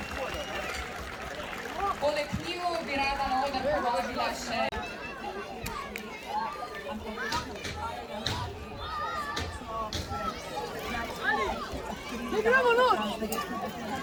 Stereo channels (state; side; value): identical; both; correlation 1.00